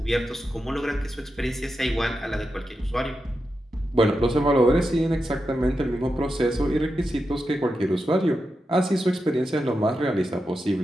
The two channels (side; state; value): both; normal; correlation 0.88